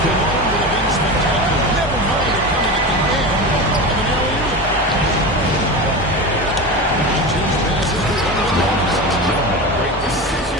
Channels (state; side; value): normal; both; correlation 0.25